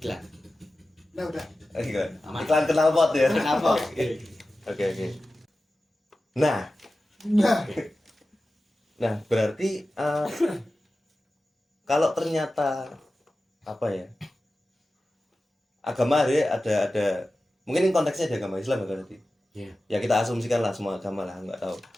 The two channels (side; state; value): both; normal; correlation 0.94